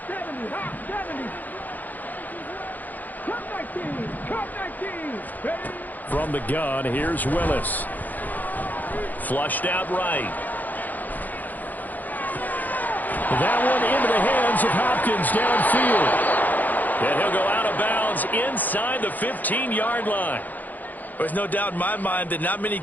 70, hot 70. Cut 19, cut 19. Ready? From the gun, here's Willis. Flushed out right. That one into the hands of Hopkins downfield. And he'll go out of bounds inside the 15-yard line. There's no doubt in my mind that not many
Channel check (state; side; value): late; right; 0.083 ms